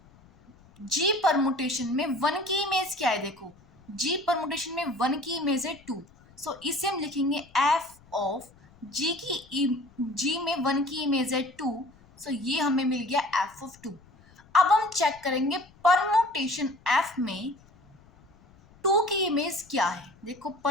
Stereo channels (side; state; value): left; noise; rumble, 27 dB below the sound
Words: g परमुटेशन में 1 की इमेज क्या है, देखो g परमुटेशन में 1 की इमेज है 2, सो इसे हम लिखेंगे f ऑफ जी में 1 की इमेज है 2, सो ये हमें मिल गया f ऑफ 2। अब हम चेक करेंगे परमुटेशन f में 2 की इमेज क्या है। देखो